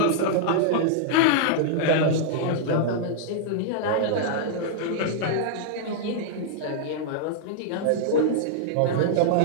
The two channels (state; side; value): different; both; correlation -0.01